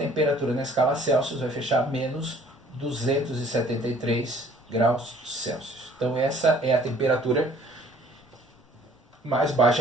na escala Celsius vai fechar menos 273 graus Celsius. Então essa é a temperatura mais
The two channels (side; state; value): both; normal; correlation 0.56